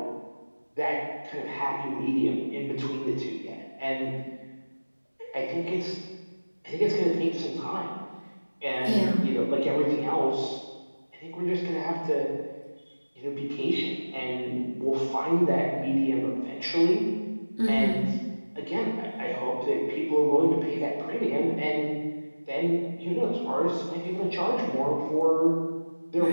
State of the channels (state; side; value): inverted; both; correlation -1.00